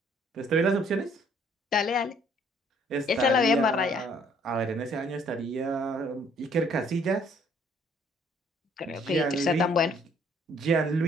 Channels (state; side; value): normal; both; correlation 0.62